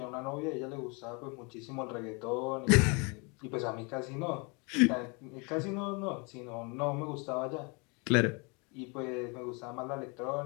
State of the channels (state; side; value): quieter; right; 31.1 dB